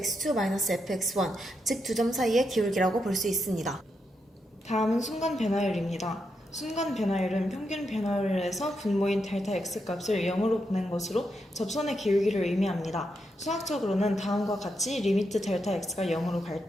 즉 두 점 사이의 기울기라고 볼 수 있습니다. 다음은 순간 변화율입니다. 순간 변화율은 평균 변화율에서 분모인 델타 x 값을 0으로 보낸 것으로 접선의 기울기를 의미합니다. 수학적으로는 다음과 같이 리미트 델타 x가 0으로 갈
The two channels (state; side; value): normal; both; correlation 0.83